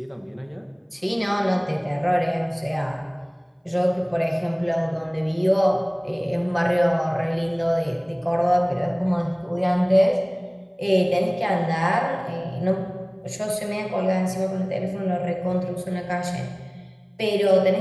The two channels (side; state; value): both; identical; correlation 1.00